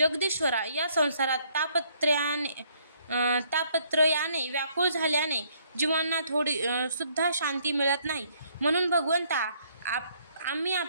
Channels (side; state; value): both; inverted; correlation -0.66